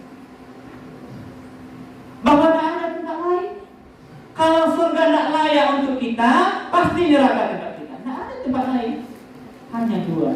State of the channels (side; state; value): both; identical; correlation 1.00